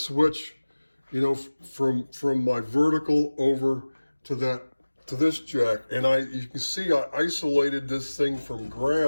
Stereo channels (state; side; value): inverted; both; correlation -1.00